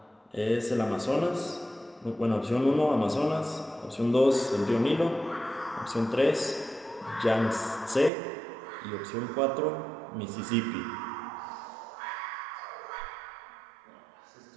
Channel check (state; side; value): drops out; left; at 8.1 s